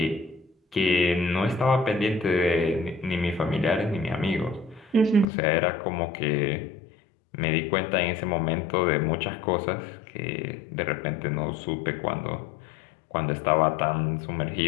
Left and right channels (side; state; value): right; drops out; at 5.2 s